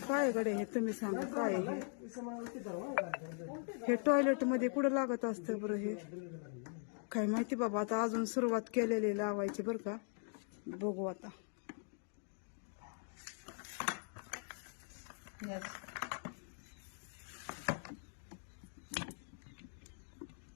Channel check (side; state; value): right; silent; 51 dB below the other